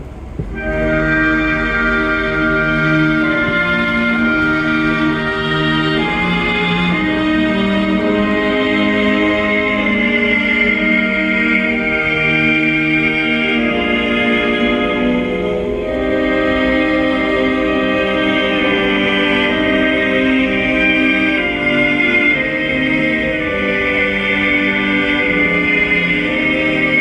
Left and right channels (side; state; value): both; identical; correlation 1.00